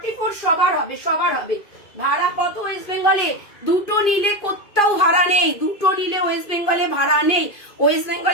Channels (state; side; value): late; right; 2.5 ms